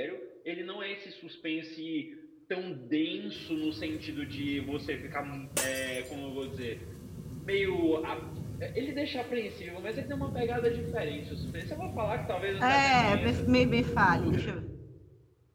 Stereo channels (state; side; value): identical; both; correlation 1.00